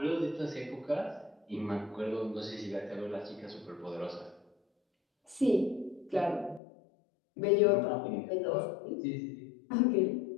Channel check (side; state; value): right; drops out; at 6.6 s